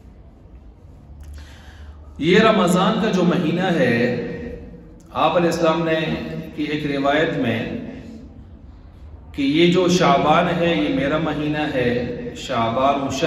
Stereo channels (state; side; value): identical; both; correlation 1.00